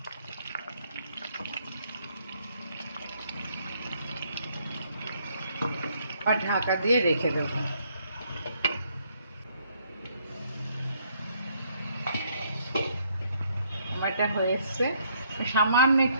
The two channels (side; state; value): both; inverted; correlation -0.69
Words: আর ঢাকা দিয়ে রেখে দেবো। আমারটা হয়ে এসছে, সামান্য